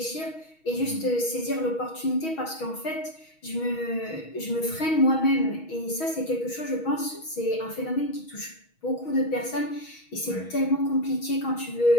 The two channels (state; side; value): late; right; 6.3 ms